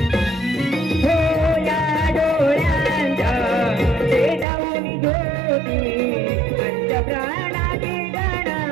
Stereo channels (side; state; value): left; drops out; at 4.5 s